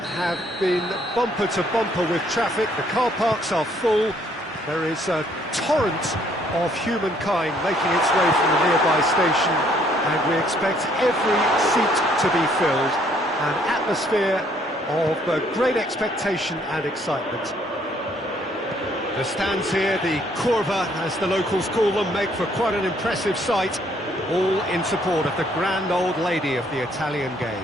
have been bumper to bumper with traffic. The car parks are full. There is a torrent of humankind making its way from the nearby station, and we expect every seat to be filled. An atmosphere of great expectation and excitement. The stands here, the curva, as the locals call them, make for quite an impressive sight, all in support of the grand old lady of the Italian game.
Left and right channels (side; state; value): both; normal; correlation 0.65